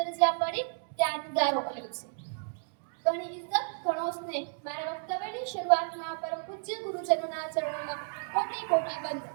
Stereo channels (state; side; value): silent; left; digital silence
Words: જ્યાં પડી ત્યાં જુદારો અલગ છે. ઘણી ઇજ્જત, ઘણો સ્નેહ. મારા વક્તવ્યની શરૂઆતમાં પરમ પૂજ્ય ગુરુજનોના ચરણોમાં કોટી કોટી વંદન.